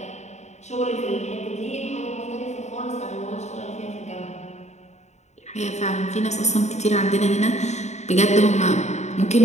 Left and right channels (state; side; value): late; right; 0.33 ms